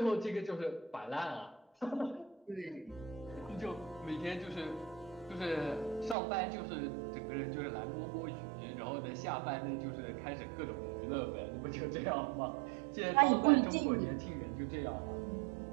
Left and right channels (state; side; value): drops out; left; at 6.2 s